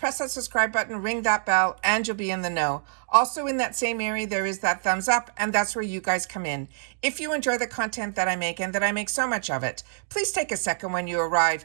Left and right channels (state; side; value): silent; left; digital silence